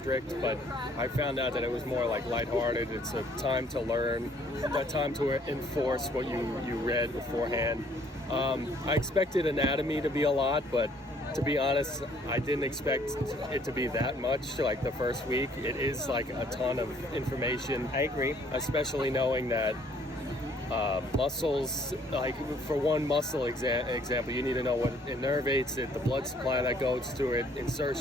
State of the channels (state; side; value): normal; both; correlation 0.62